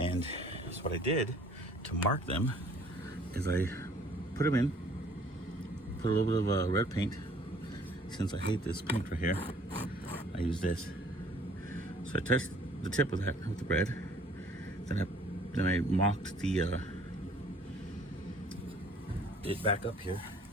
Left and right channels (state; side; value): normal; both; correlation 0.56